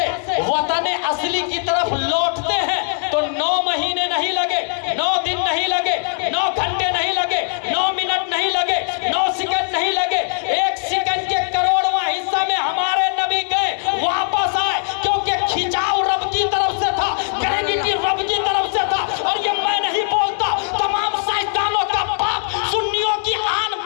وطن اصلی کی طرف لوٹتے ہیں تو 9 مہینے نہیں لگے، 9 دن نہیں لگے، 9 گھنٹے نہیں لگے، 9 منٹ نہیں لگے، 9 سیکنڈ نہیں لگے، 1 سیکنڈ کے کروڑواں حصہ میں ہمارے نبی گئے، واپس آئے، کیونکہ کھچاؤ رب کی طرف سے تھا، گریویٹی رب کی طرف سے تھا۔ اور یہ میں نہیں بولتا، تمام سائنسدانوں کا باپ، سنیوں کی آن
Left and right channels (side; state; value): right; silent; digital silence